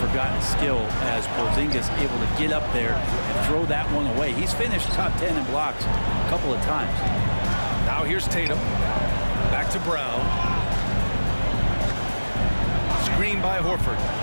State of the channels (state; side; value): inverted; both; correlation -1.00